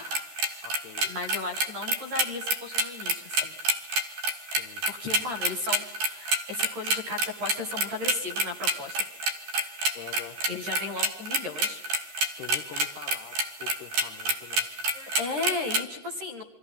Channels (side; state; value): left; late; 13 ms